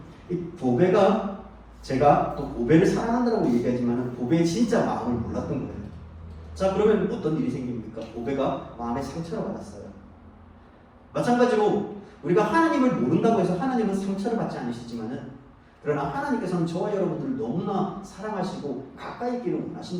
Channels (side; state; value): both; identical; correlation 1.00